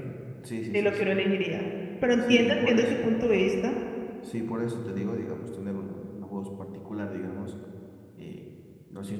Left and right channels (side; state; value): both; identical; correlation 1.00